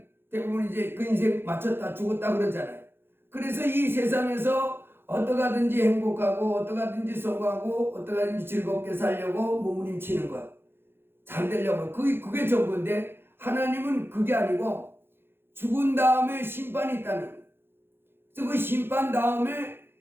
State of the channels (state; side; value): late; left; 0.11 ms